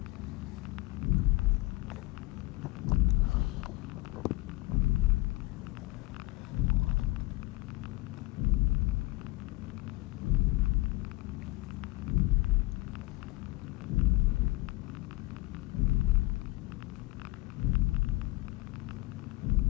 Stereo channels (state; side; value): quieter; right; 21.3 dB